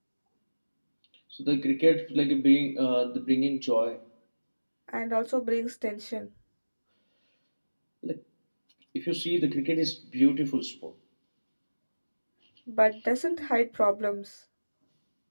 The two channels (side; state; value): both; inverted; correlation -1.00